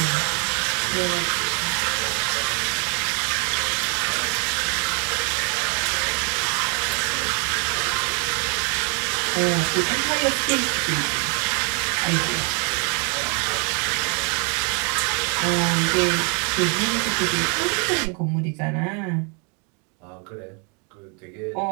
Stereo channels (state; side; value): quieter; left; 36.6 dB